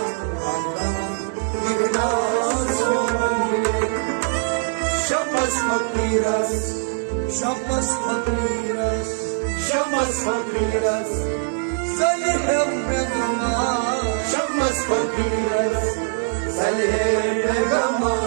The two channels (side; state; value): left; silent; 59 dB below the other